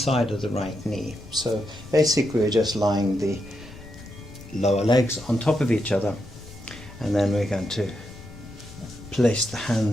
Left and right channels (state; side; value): noise; left; rumble, 18 dB below the sound